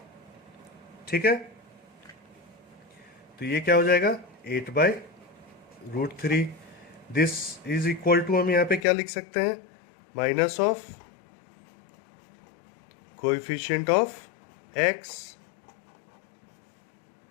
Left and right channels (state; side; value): drops out; right; at 8.8 s